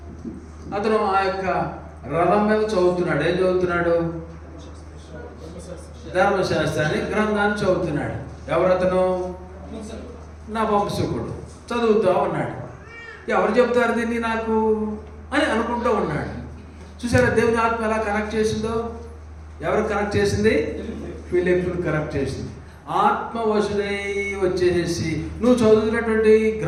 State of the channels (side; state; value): both; identical; correlation 1.00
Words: అతను ఆ యొక్క రథం మీద చదువుతున్నాడు. ఏం చదువుతున్నాడు? ధర్మశాస్త్రాన్ని గ్రంథాన్ని చదువుతున్నాడు. ఎవరతను? నా వంశకుడు. చదువుతూ ఉన్నాడు. ఎవరు చెప్తారు దీన్ని నాకు అని అనుకుంటూ ఉన్నాడు. చూసారా దేవుని ఆత్మ ఎలా కనెక్ట్ చేసిందో? ఎవరు కనెక్ట్ చేసింది? ఫిలిప్పును కనెక్ట్ చేసింది. ఆత్మ వశుడై వచ్చేసి నువ్వు చదువుతున్నటువంటి